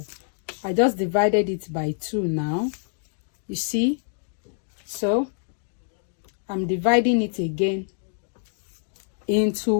I just divided it by 2 now. You see? So I'm dividing it again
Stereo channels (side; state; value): right; silent; digital silence